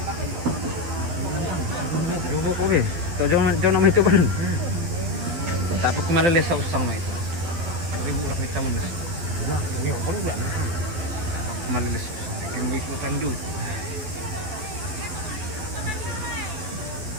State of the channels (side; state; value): left; late; 11 ms